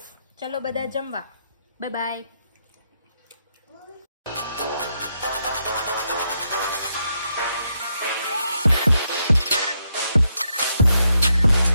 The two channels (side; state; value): both; inverted; correlation -0.80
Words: ચલો બધા જમવા. Bye bye.